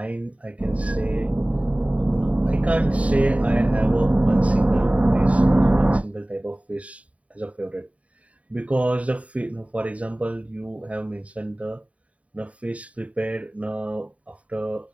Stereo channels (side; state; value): left; late; 0.067 ms